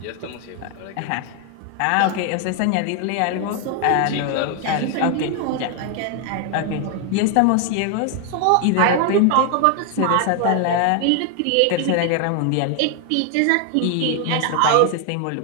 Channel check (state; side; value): different; both; correlation 0.00